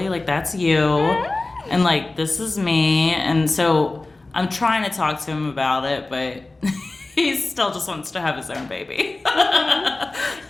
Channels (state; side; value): quieter; right; 3.1 dB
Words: Like, that's you. And like, this is me. And so I'm trying to talk to him about it, but he still just wants to have his own baby.